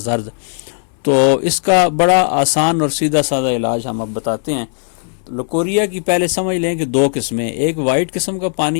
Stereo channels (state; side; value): silent; right; digital silence